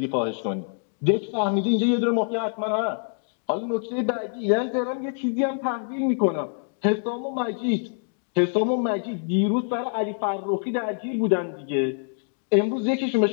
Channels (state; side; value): silent; right; 61 dB below the other